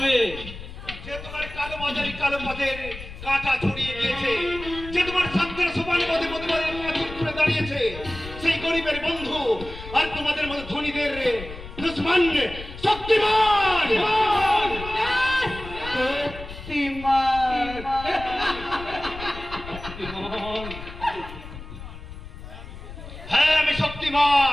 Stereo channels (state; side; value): noise; left; rumble, 12 dB below the sound